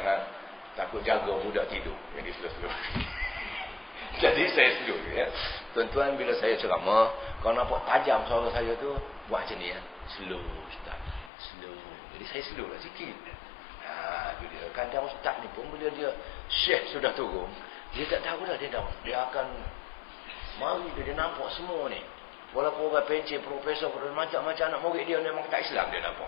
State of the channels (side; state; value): right; drops out; at 11.3 s